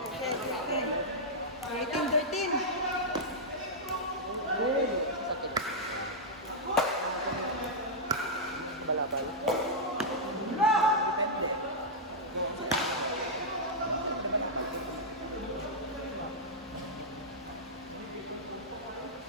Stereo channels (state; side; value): normal; both; correlation -0.08